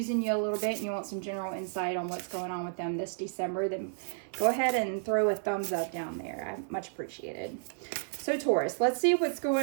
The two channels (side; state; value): left; silent; digital silence